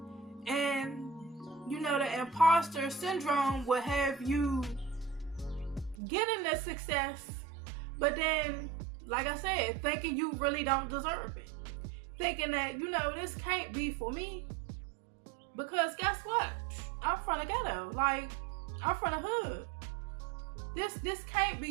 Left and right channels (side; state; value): left; drops out; at 6.0 s